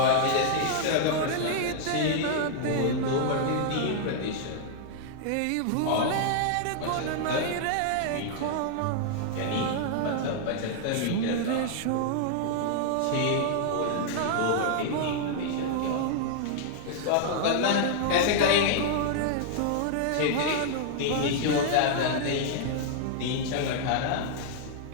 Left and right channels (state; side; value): different; both; correlation -0.01